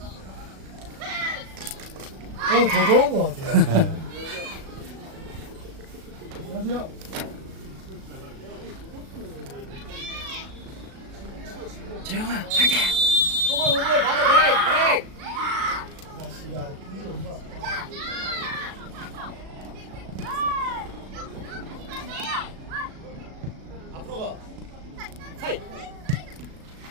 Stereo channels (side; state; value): left; late; 37 ms